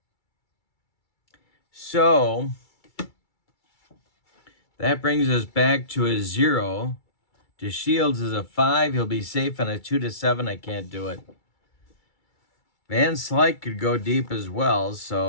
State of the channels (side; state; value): right; late; 2.3 ms